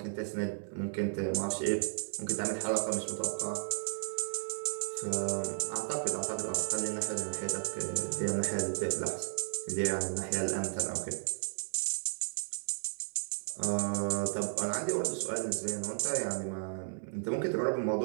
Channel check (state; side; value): silent; left; 55 dB below the other